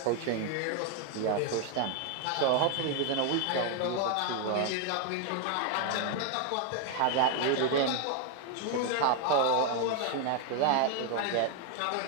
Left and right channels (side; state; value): both; different; correlation 0.00